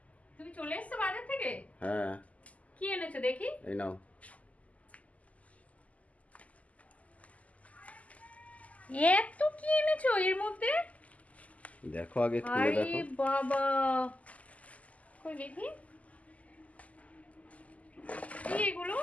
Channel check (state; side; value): late; right; 0.071 ms